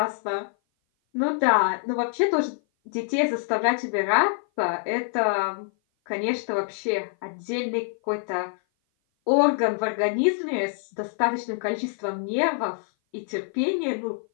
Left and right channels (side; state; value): right; silent; 56 dB below the other